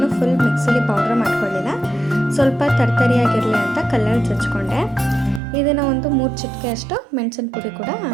ಫುಲ್ ಮಿಕ್ಸಿಲಿ ಪೌಡ್ರ್ ಮಾಡ್ಕೊಳ್ಳಿಲ್ಲ, ಸ್ವಲ್ಪ ತರ್ತರಿಯಾಗಿರಲಿ ಅಂತ ಕಲ್ಲಲ್ಲಿ ಜಜ್ಕೊಂಡೆ. ಇದನ್ನು ಒಂದು 3 ಚಿಟಿಕೆ ಅಷ್ಟು ಮೆಣಸಿನ ಪುಡಿ ಕೂಡ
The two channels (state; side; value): drops out; left; at 5.4 s